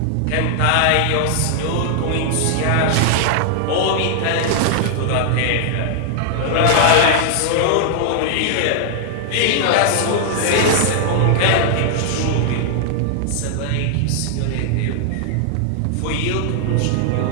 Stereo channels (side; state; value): both; different; correlation -0.01